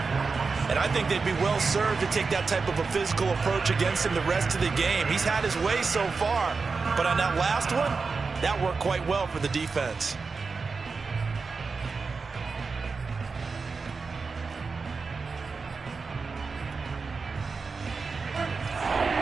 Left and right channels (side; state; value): left; quieter; 4.6 dB